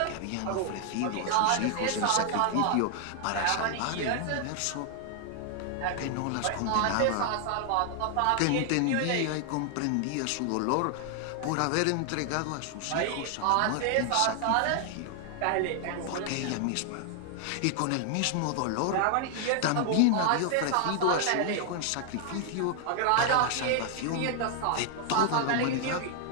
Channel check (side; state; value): both; different; correlation 0.00